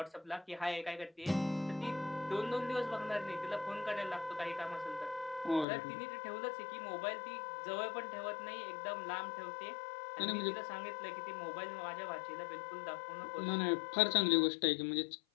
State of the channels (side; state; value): right; drops out; at 5.7 s